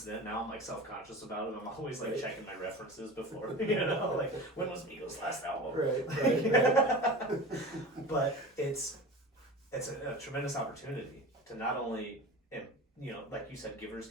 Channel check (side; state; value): both; normal; correlation 0.33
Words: then, now I'm like self-conscious about it. I'm always like checking my references before, you know, like when was Migos' last album? Right. But it's a tremendous opportunity to not only, you know, like you said, givers